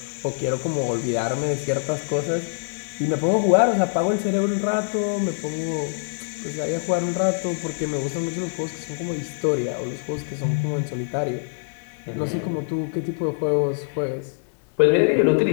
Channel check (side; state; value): right; silent; digital silence